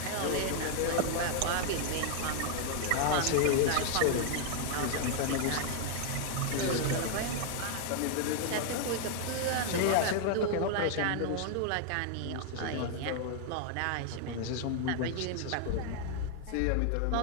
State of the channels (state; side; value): different; both; correlation 0.00